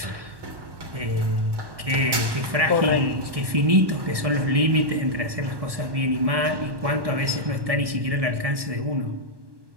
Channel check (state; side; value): late; left; 1.1 ms